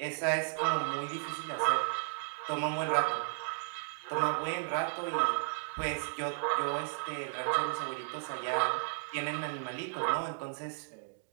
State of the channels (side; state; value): left; silent; digital silence